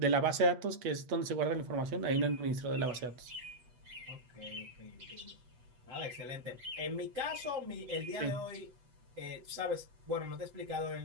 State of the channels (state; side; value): late; left; 8.1 ms